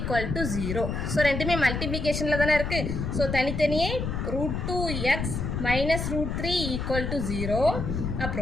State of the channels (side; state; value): left; noise; rumble, 3 dB below the sound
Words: 0. ஸோ ரெண்டுமே மல்டிப்ளிகேஷனில் தானே இருக்குது. ஸோ தனித்தனியே √2x -√3 = 0.